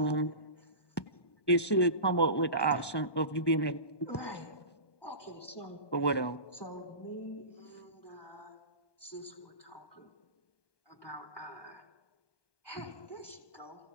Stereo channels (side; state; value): right; late; 1.2 ms